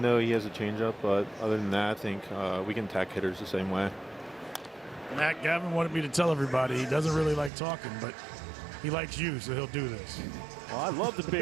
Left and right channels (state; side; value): drops out; left; at 7.5 s